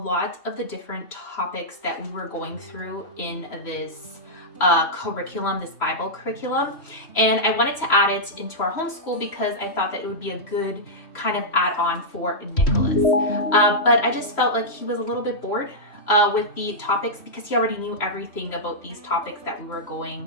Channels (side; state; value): right; late; 3.0 ms